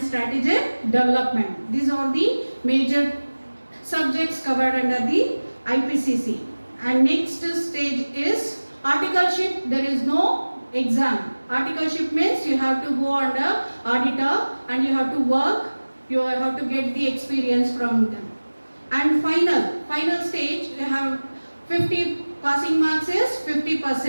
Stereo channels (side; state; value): both; inverted; correlation -1.00